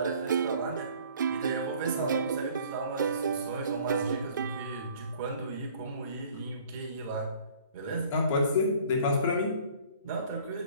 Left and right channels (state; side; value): inverted; both; correlation -0.53